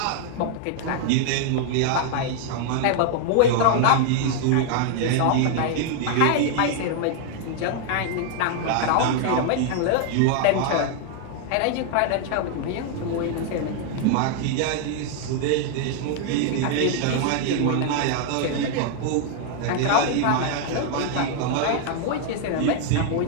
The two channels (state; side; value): different; both; correlation 0.00